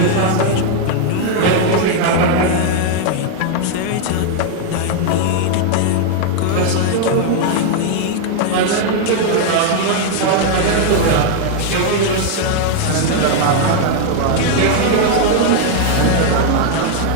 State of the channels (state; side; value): different; both; correlation 0.00